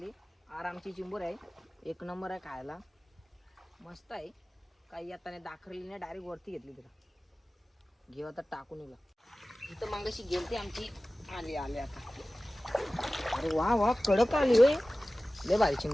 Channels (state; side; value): normal; both; correlation 0.97